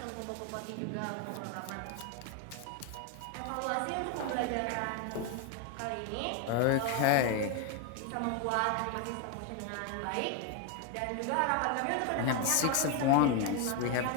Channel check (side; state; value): both; different; correlation 0.01